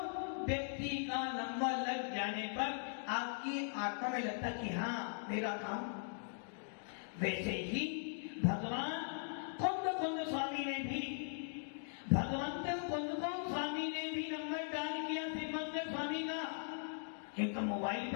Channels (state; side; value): silent; right; digital silence